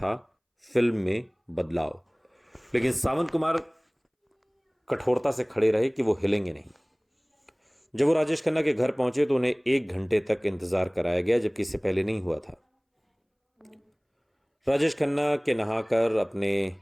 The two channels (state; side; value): identical; both; correlation 1.00